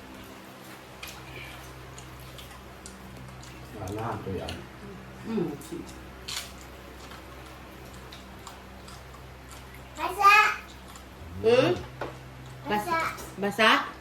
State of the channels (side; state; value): both; identical; correlation 1.00